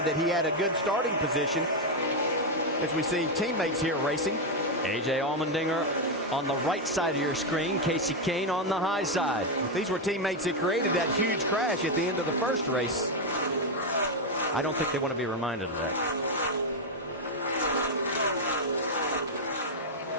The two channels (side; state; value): both; normal; correlation 0.04